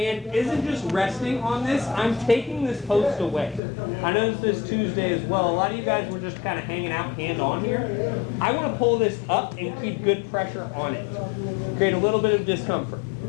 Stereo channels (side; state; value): right; drops out; at 3.6 s